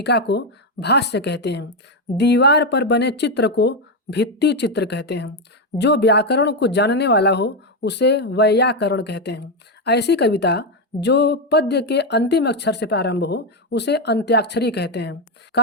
को भाष्य कहते हैं। दीवार पर बने चित्र को भित्ति चित्र कहते हैं। जो व्याकरण को जानने वाला हो उसे वैयाकरण कहते हैं। ऐसी कविता जो पद्य के अंतिम अक्षर से प्रारंभ हो उसे अंत्याक्षरी कहते हैं।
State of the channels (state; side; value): normal; both; correlation 0.07